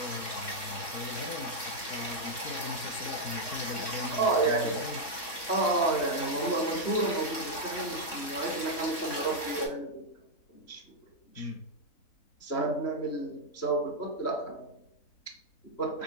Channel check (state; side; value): late; right; 3.6 ms